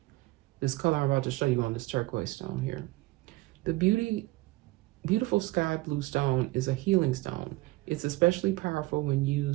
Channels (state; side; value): quieter; left; 20.4 dB